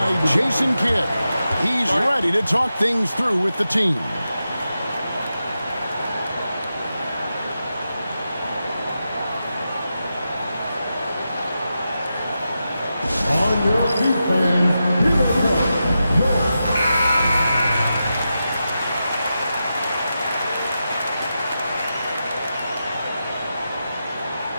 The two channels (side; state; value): both; inverted; correlation -0.89